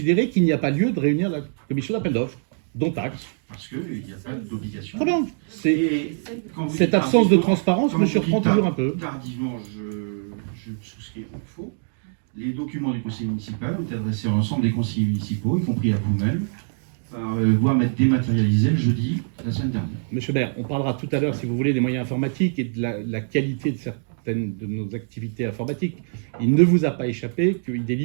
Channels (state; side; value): silent; left; digital silence